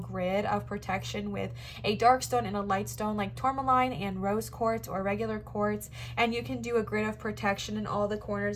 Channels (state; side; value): identical; both; correlation 1.00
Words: of protection with a dark stone and a light stone like tourmaline and rose quartz or regular quartz, and you can do a grid of protection in all the